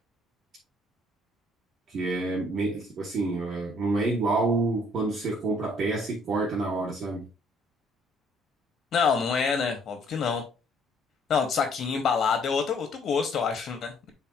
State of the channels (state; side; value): normal; both; correlation 0.62